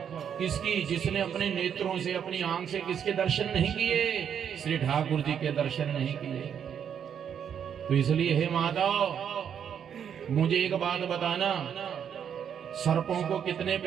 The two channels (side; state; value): left; quieter; 8.3 dB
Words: किसकी? जिसने अपने नेत्रों से, अपनी आंख से किसके दर्शन नहीं किए? श्री ठाकुर जी के दर्शन नहीं किए। तो इसलिए हे माताओ, मुझे एक बात बताना, सर्पों को कितने